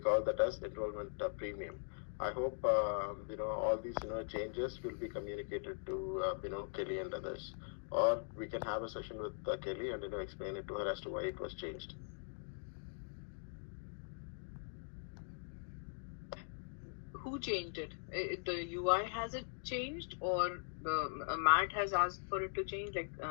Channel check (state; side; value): silent; right; digital silence